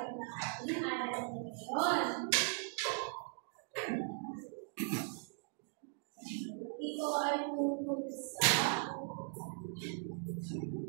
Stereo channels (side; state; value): left; silent; 52 dB below the other